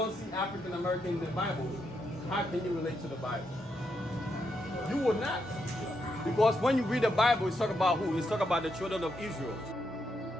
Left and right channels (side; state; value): both; normal; correlation 0.81